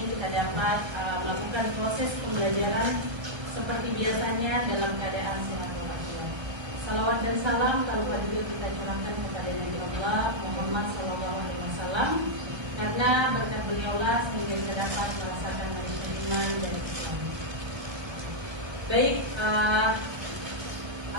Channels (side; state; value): left; late; 1.3 ms